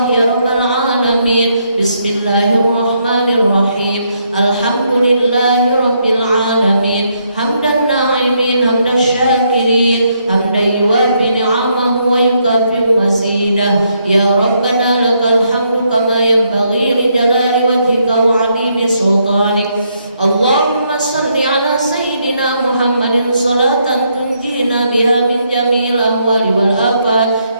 ya Rabbal Alamin. Bismillahirrahmanirrahim. Alhamdulillahi Rabbil Alamin. Hamdan na'imin, hamdan syakirin, hamdan yuwafi ni'amahu wa yukafi mazidah. Ya Rabbana lakal hamdu kama yanbaghi li jalali wajhika wa 'azimi sultanik. Allahumma salli ala sayyidina Muhammadin salatan tunjina biha min jami'il ahwali wal afat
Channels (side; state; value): both; inverted; correlation -0.75